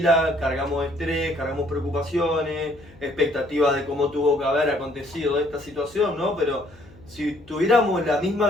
cargamos estrés, cargamos preocupaciones, expectativas de cómo tuvo que haber acontecido esta situación, ¿no? Pero si tuviéramos la misma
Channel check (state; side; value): noise; left; hum, 24 dB below the sound